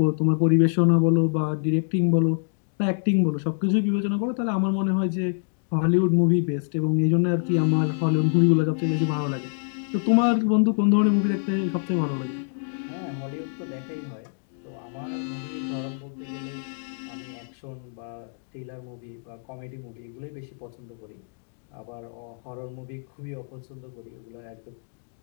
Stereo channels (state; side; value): silent; right; digital silence